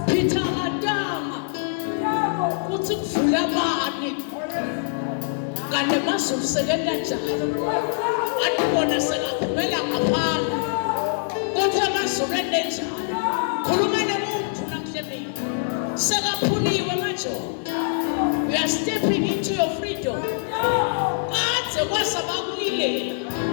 Kane masumsebenza njalo andibona sekaphumela ngaphandle kodwa masumele njalo khuluma nomuntu namhlanje sekaphuliwe manje we are stepping into your freedom kade kwasabakulilela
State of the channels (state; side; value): silent; right; digital silence